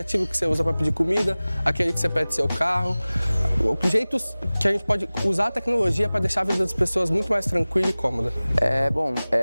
que você usa para pedir comida, aquele que você pede seu carro, jeitos que a gente pode usar a tecnologia para deixar a vida das pessoas muito mais tranquila e cômoda.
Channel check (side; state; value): both; inverted; correlation -0.99